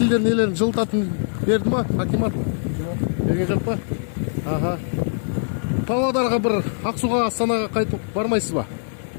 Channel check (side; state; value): right; silent; digital silence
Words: нелерін жылытатын берді ма? Акимат? Берген жоқ па? Ага. Павлодарға бір Ақсуға, Астанаға қайтып бармайсыз ба?